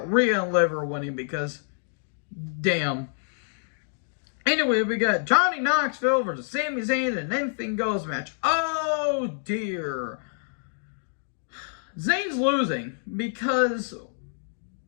Rhea and Liv are winning because, damn. Anyway, we got Johnny Knoxville versus Sami Zayn in an anything goes match. Oh, dear. Zayn's losing because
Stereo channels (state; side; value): silent; right; digital silence